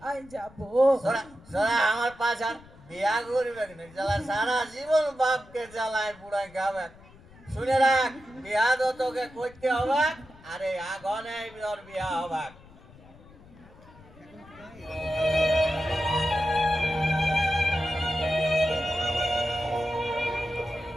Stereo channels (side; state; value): left; noise; rumble, 23 dB below the sound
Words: যাব। সোরা সোরা আমার পাশার বিয়া করবে না, জ্বালা সারা জীবন বাপকে জ্বালায় বুড়ায় খাবে। শুনে রাখ, বিয়া তো তোকে করতে হবে, আরে আগুনে তোর বিয়া হবে।